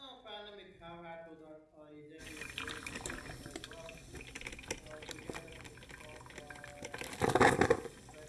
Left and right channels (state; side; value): identical; both; correlation 1.00